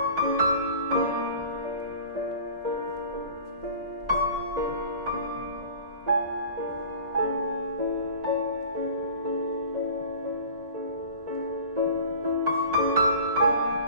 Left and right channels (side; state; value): left; late; 1.9 ms